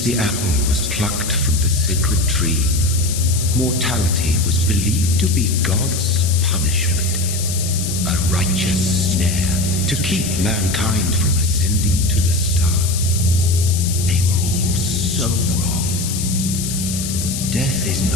the apple was plucked from the sacred tree, mortality was believed to be God's punishment, a righteous snare to keep mankind from ascending to the stars. They were all so wrong. Death is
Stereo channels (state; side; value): noise; left; hiss, 6 dB below the sound